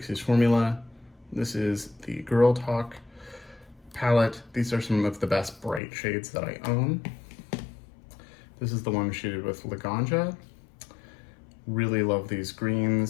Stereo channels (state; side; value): drops out; right; at 5.8 s